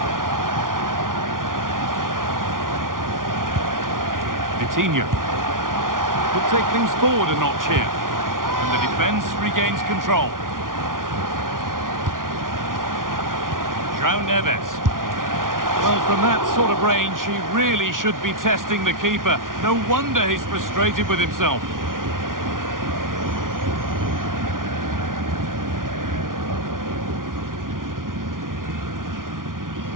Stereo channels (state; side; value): late; left; 0.90 ms